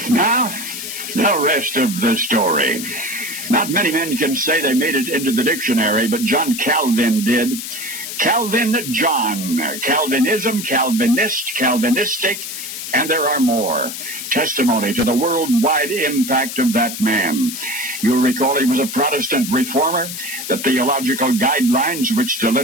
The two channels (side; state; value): left; noise; hiss, 7 dB below the sound